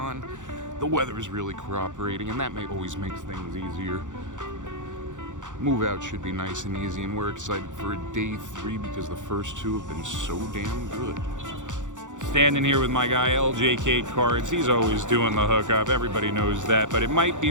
The weather is really cooperating, and that always makes things easier. Move out should be nice and easy, and we're excited for day 3 because the first 2 have been so damn good. Standing here with my guy LJK Cards. He's always doing the hookup, everybody knows that, but it might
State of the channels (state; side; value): late; left; 0.86 ms